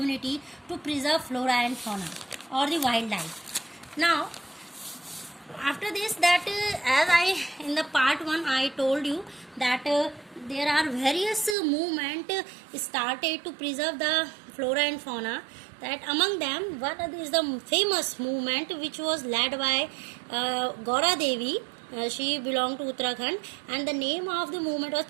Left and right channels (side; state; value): left; drops out; at 11.6 s